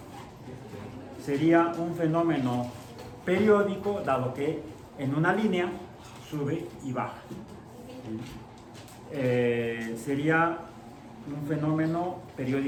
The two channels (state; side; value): identical; both; correlation 1.00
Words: sería un fenómeno periódico, dado que en una línea sube y baja. Sería un fenómeno